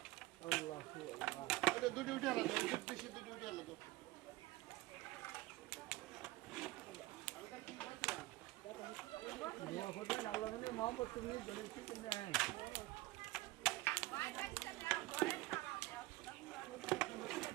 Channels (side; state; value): left; quieter; 19.0 dB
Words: দুটি উঠে আলাদা দুটি উঠে আলাদা